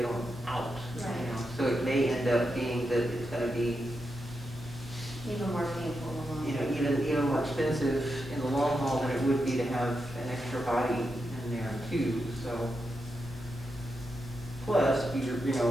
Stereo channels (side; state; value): both; normal; correlation 0.86